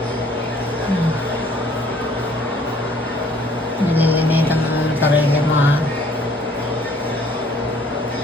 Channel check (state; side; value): normal; both; correlation 0.58